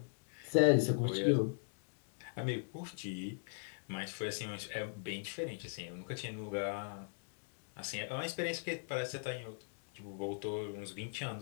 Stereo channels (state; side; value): silent; right; digital silence